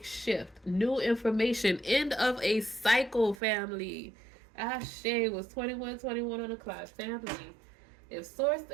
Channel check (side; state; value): left; drops out; at 3.4 s